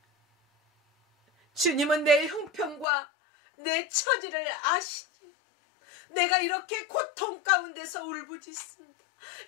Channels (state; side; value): drops out; right; at 2.9 s